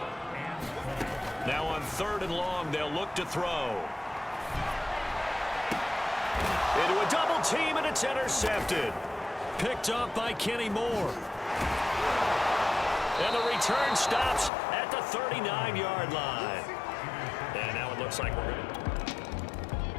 Now on 3rd and long, they'll look to throw. Into a double team, and it's intercepted. Picked up by Kenny Moore. And the return stops at the 39-yard line. And now it looks like we're going to...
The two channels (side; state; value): right; drops out; at 14.5 s